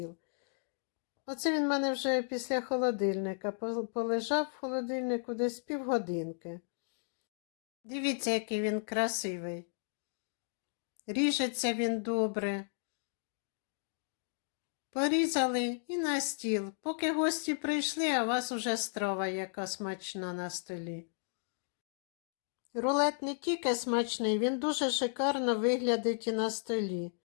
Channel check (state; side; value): silent; right; digital silence